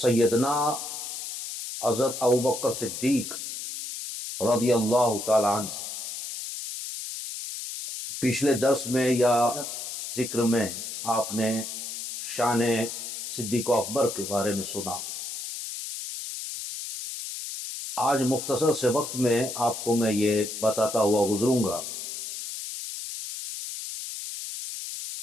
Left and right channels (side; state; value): left; noise; hiss, 7 dB below the sound